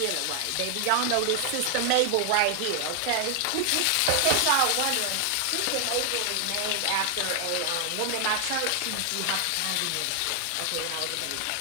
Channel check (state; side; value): different; both; correlation 0.00